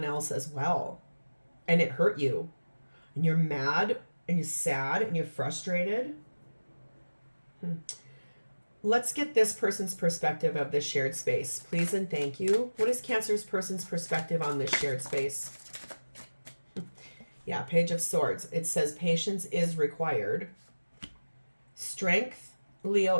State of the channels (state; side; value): inverted; both; correlation -1.00